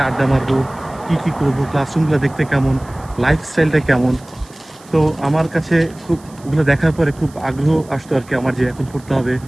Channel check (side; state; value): right; noise; hiss, 25 dB below the sound